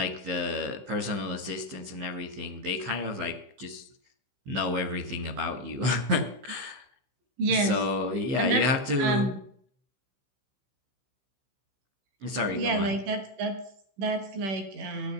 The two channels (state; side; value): late; left; 15 ms